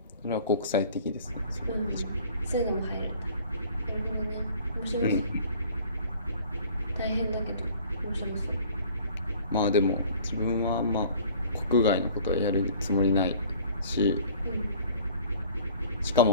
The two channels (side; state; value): both; inverted; correlation -0.50